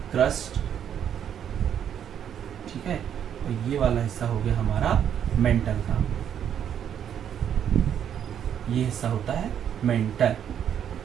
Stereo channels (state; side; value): quieter; left; 9.1 dB